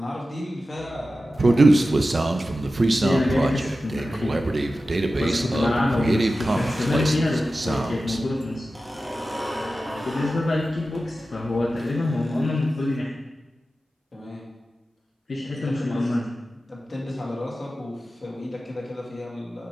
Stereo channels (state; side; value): normal; both; correlation 0.94